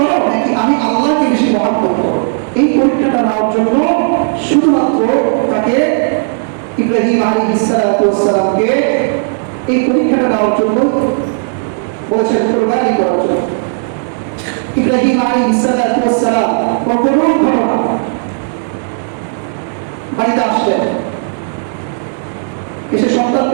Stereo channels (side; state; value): left; silent; digital silence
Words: নাকি আমি আল্লাহকে বেশি মহব্বত করো, এই পরীক্ষাটা নেওয়ার জন্য শুধুমাত্র তাকে ইব্রাহিম আলাইহিস সালামকে এই পরীক্ষাটা নেওয়ার জন্য বলেছেন, কুরবানি করার জন্য। ইব্রাহিম আলাইহিস সালাম কখনো ঘটনা বাড়িতে আসলেন, এসে